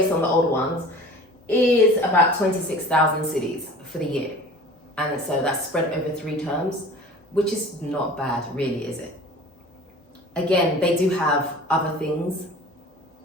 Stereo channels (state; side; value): normal; both; correlation 0.42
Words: on the older ones, is about 26,000 cedis for the year. And so that's spread over 3 terms, which is not bad, really, is it? Again, they do have other things.